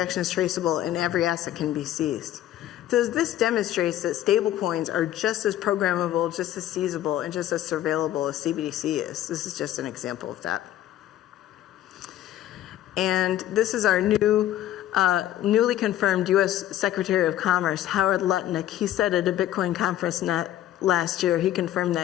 is traceable, and every asset can be seized. So this demonstrates that stablecoins are just as programmable, just as seizable, and just as surveillable as CBDC is. This is just an example of that. And this is our newly confirmed U.S. Secretary of Commerce, Howard Lutnick. He said at a Bitcoin conference last year, he confirmed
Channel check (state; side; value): quieter; right; 12.7 dB